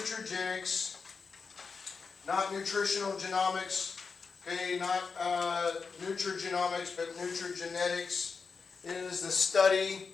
not nutritional genomics. Okay, not nutrigenomics, but nutrigenetics. It is the study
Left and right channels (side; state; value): right; quieter; 5.1 dB